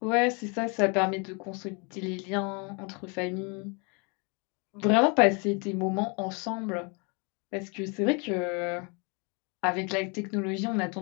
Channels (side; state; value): right; quieter; 32.9 dB